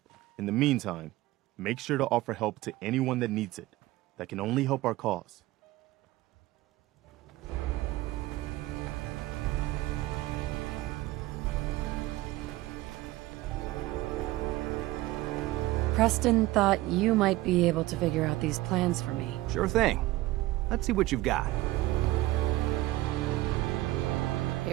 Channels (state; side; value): quieter; left; 17.5 dB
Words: In the meantime, make sure to offer help to anyone that needs it. That can only help our cause. Preston thought you might be able to figure out these plans for me. Sure thing. Let's see what you've got.